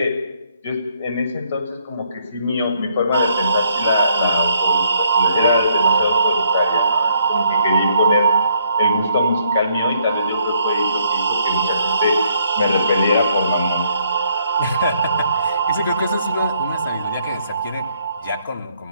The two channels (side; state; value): both; inverted; correlation -0.70